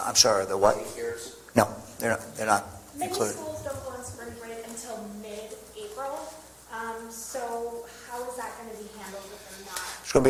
I'm sorry, the what? Daycares? No, they're not Many included. schools don't go on spring break until mid-April, so how is that going to be handled if they're not? It's going to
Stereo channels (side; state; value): both; identical; correlation 1.00